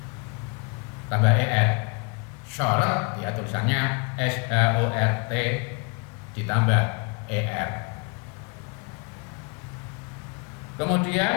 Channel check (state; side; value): quieter; right; 31.8 dB